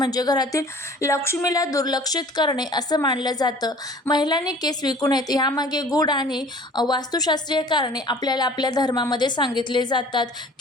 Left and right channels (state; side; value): normal; both; correlation 0.48